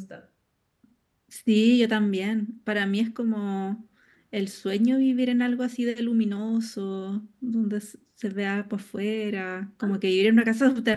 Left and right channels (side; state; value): both; identical; correlation 1.00